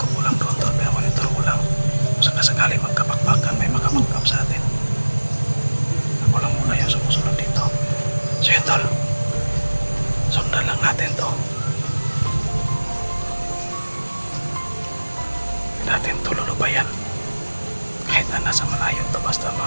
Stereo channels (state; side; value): inverted; both; correlation -1.00